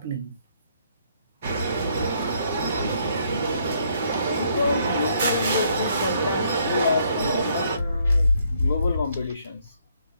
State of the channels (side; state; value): both; inverted; correlation -0.69